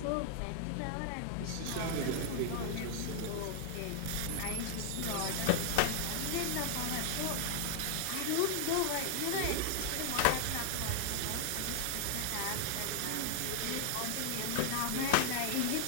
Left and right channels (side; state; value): both; different; correlation 0.00